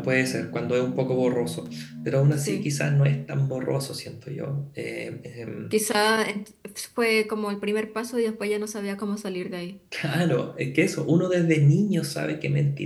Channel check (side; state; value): both; identical; correlation 1.00